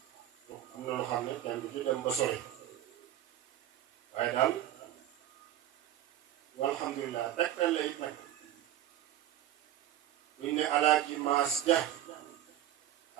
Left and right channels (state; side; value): quieter; left; 12.2 dB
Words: am na lu xam ne kenn du ci dem ba sori waaye daal walhamdulilah tegtal la it nag buñ ne alaaji maas ja